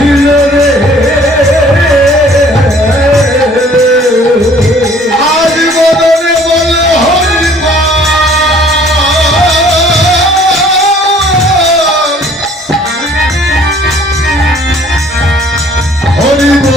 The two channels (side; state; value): both; normal; correlation 0.55